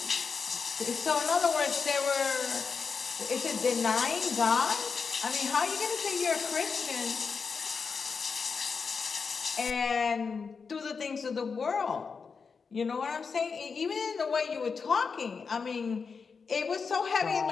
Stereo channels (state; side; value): quieter; right; 5.3 dB